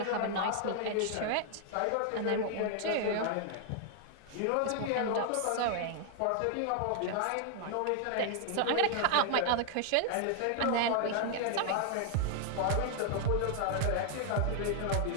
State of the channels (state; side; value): different; both; correlation 0.00